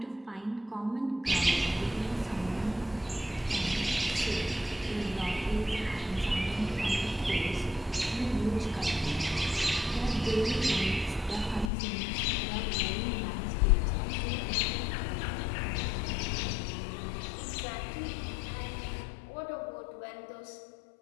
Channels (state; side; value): drops out; right; at 11.7 s